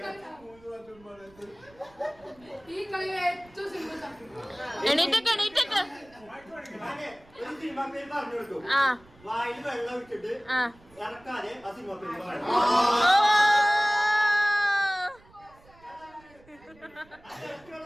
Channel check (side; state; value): right; noise; rumble, 27 dB below the sound